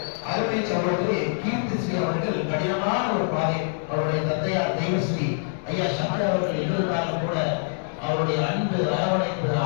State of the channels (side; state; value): right; silent; 62 dB below the other